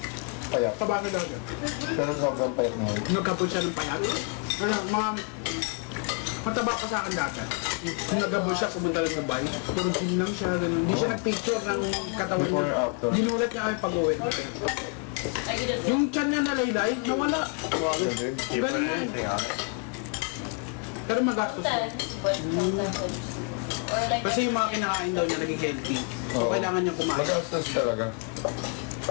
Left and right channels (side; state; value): right; quieter; 37.0 dB